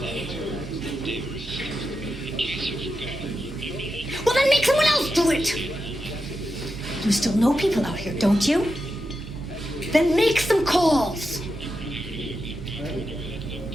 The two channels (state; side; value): normal; both; correlation 0.88